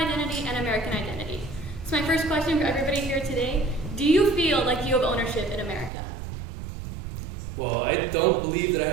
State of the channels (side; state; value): left; drops out; at 5.9 s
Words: and American identity. So my first question for everybody here today, do you feel like you have ownership in America? Well, I don't believe that I